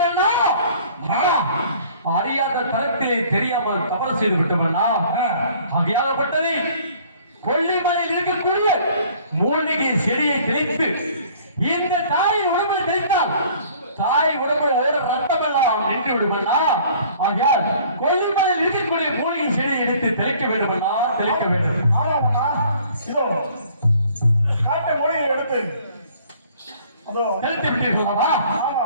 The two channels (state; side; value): inverted; both; correlation -0.54